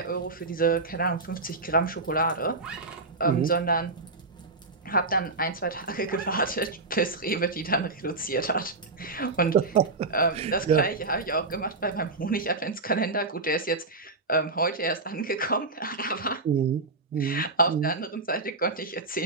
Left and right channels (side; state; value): left; quieter; 3.5 dB